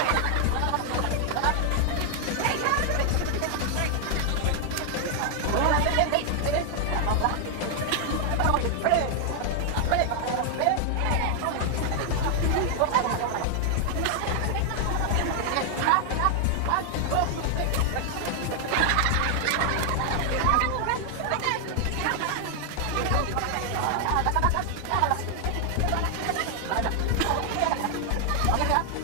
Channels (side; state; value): both; different; correlation 0.00